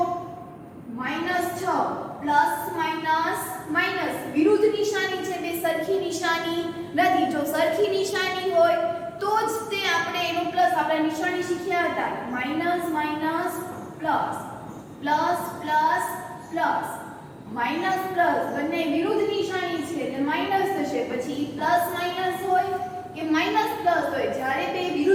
-6 + વિરુદ્ધ નિશાની છે, બે સરખી નિશાની નથી. જો સરખી નિશાની હોય તો જ તે આપણે એનો પ્લસ, આપણે નિશાની શીખ્યા હતા minus minus plus plus plus plus minus plus બંને વિરુદ્ધ નિશાની છે એટલે માઈનસ થશે. પછી પ્લસ માઈનસ હોય કે માઈનસ પ્લસ હોય, જ્યારે બે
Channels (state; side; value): identical; both; correlation 1.00